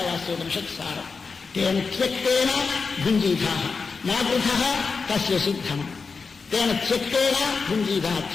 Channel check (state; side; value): quieter; right; 4.8 dB